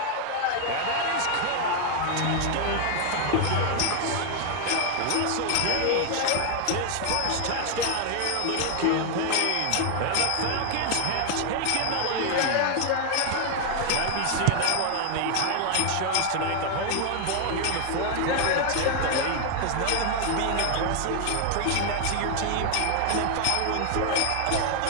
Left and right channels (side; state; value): both; different; correlation 0.00